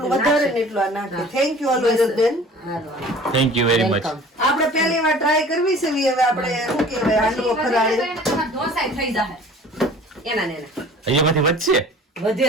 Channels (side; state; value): both; normal; correlation 0.46